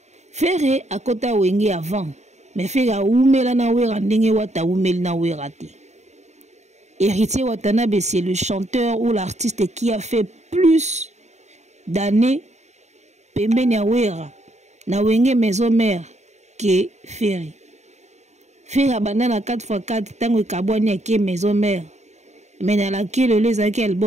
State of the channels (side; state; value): left; late; 0.33 ms